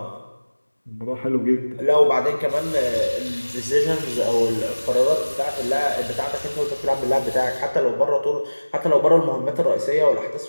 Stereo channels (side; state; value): both; inverted; correlation -1.00